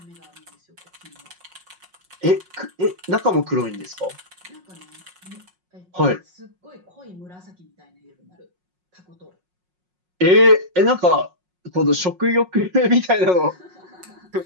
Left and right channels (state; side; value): late; left; 5.5 ms